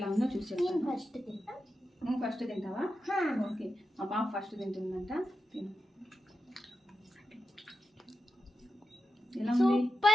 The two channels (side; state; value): both; normal; correlation 0.89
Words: ఉందో చూసి చెప్తాను. నువ్వు ఫస్ట్ తింటావా? ఓకే, మా పాప ఫస్ట్ తింటుందంట. తిను. ఎలా ఉంది?